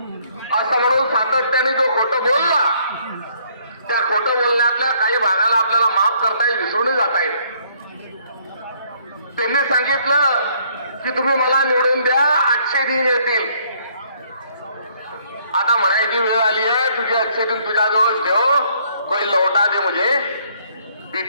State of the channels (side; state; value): both; inverted; correlation -0.65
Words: असं म्हणून सातत्याने जो खोटं बोलला, त्या खोटं बोलण्यातल्या काही भागाला आपल्याला माफ करता येईल, विसरून जाता येईल. त्यांनी सांगितलं की तुम्ही मला निवडून द्या, 800 दिन येतील. आता म्हणायची वेळ आली आहे, तुझे 800 दिन तुझ्याजवळ ठेव, कोई लौटा दे मुझे